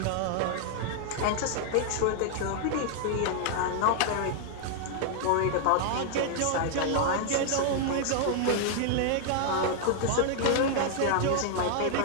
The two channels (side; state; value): both; different; correlation -0.01